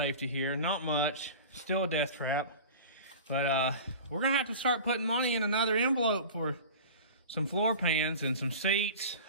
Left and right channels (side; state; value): both; inverted; correlation -0.36